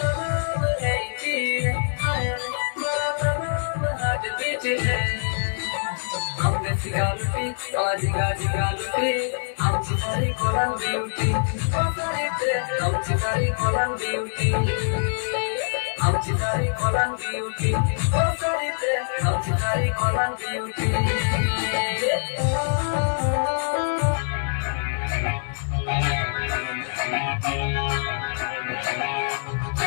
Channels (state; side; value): silent; right; digital silence